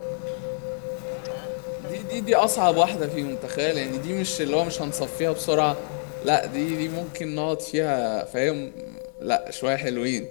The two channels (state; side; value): silent; right; 59 dB below the other